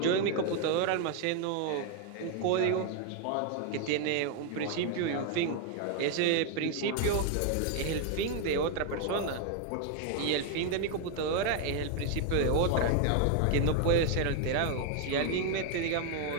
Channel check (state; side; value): different; both; correlation 0.00